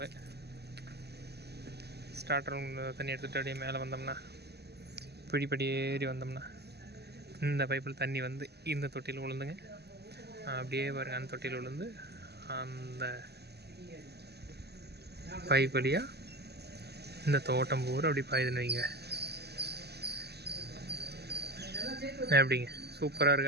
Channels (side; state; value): left; late; 0.48 ms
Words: ஸ்டார்டர் ரூம் தண்ணி எடுத்துகிட்டு அப்படியே மேலே வந்தோம்னா படி ஏறி வந்தோம்னா இந்த பைப்பில் தண்ணி வந்து இந்த தொட்டியில் விழுந்துங்க. அப்படியே பாருங்கள், அந்த தொட்டியில் விழுந்து அந்த பைப் வழியாக இந்த தோட்டம் பூரா அப்படி பாயுதுன்னு வைங்க. எப்படிங்க, சூப்பராக